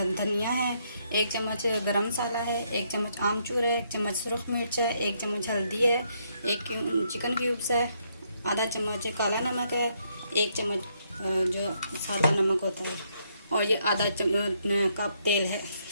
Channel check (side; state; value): both; inverted; correlation -0.74